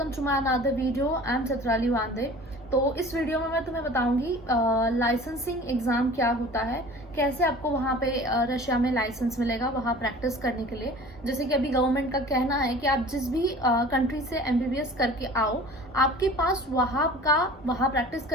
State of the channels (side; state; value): both; normal; correlation 0.43